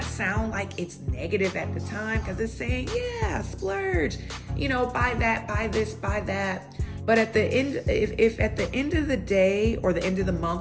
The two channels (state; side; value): identical; both; correlation 1.00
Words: sound like it's negative at the time, because it's saying, yeah, splurge, buy that, buy this, buy that. But at the end, if at the end of the day or the end of the